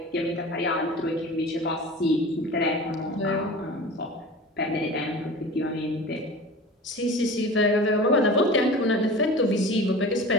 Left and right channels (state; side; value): normal; both; correlation 0.36